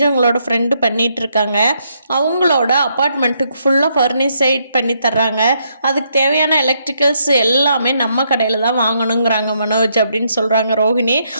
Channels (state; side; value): inverted; both; correlation -0.75